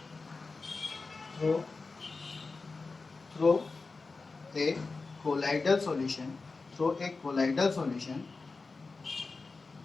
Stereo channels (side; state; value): right; quieter; 4.0 dB